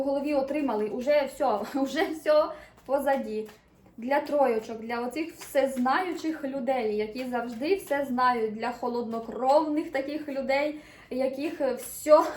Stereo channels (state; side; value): identical; both; correlation 1.00